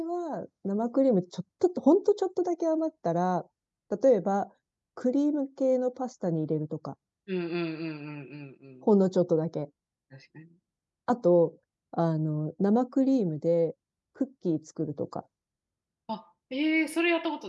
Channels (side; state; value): both; identical; correlation 1.00